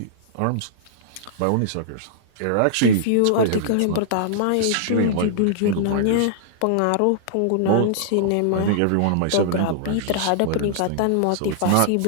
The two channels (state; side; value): different; both; correlation -0.01